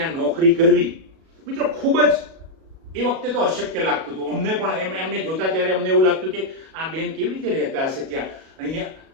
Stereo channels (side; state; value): left; late; 37 ms